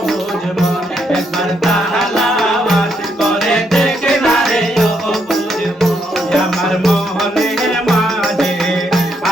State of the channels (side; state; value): both; normal; correlation 0.76